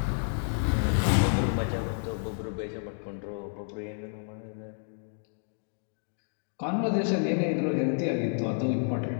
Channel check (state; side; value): silent; right; 58 dB below the other